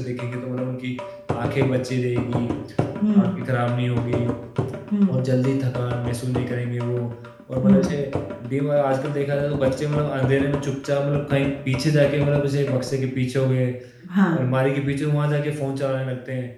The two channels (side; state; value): both; identical; correlation 1.00